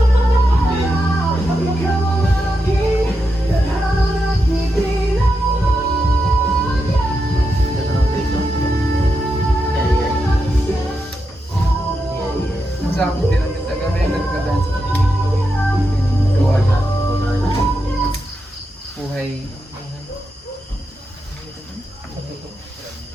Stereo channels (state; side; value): normal; both; correlation 0.86